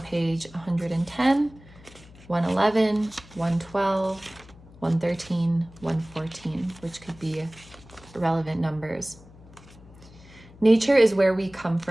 page 110, 111, 112, 113, 114, which could be relevant numbers. Nature is where we come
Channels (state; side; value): noise; left; hum, 22 dB below the sound